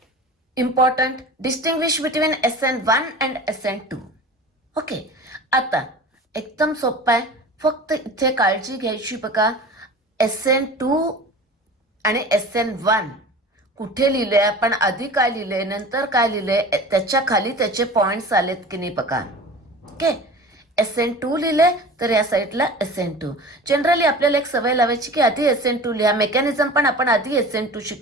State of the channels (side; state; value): both; normal; correlation 0.38